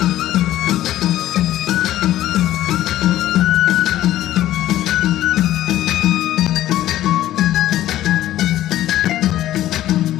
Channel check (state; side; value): quieter; right; 13.7 dB